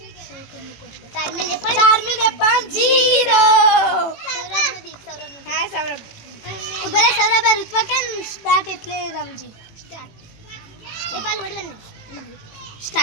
ચાર્મી ને પણ 0. હા સૌરભ. ઉભરે સૌરભ ઋત્વા કેમ સ્ટાર્ટ એટલે રમજી સ્ટાર્ટ. એ પાલ વડવાનું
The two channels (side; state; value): right; late; 18 ms